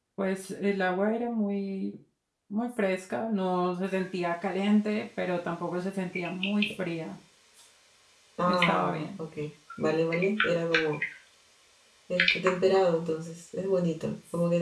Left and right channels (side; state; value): both; identical; correlation 1.00